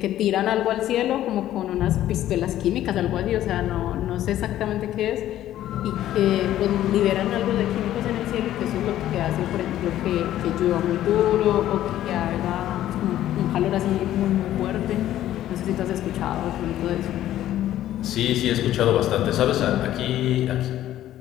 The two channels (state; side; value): quieter; right; 12.9 dB